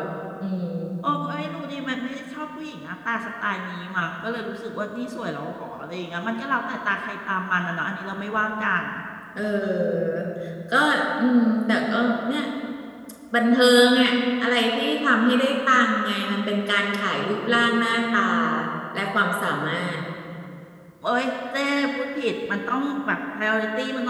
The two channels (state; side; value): identical; both; correlation 1.00